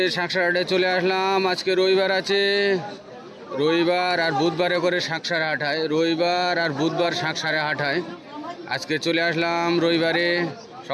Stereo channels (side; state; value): both; identical; correlation 1.00